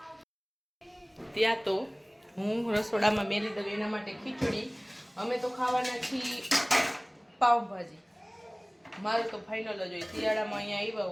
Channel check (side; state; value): both; identical; correlation 1.00